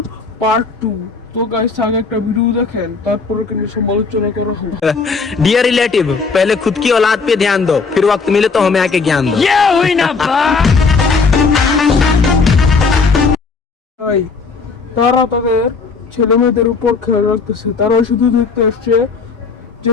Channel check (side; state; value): right; quieter; 4.7 dB